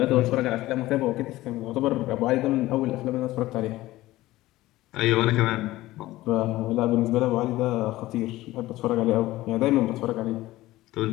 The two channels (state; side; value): quieter; right; 17.1 dB